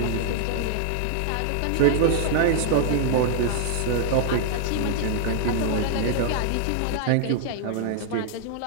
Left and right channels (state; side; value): different; both; correlation -0.01